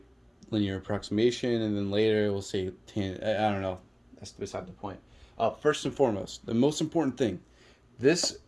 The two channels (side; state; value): both; identical; correlation 1.00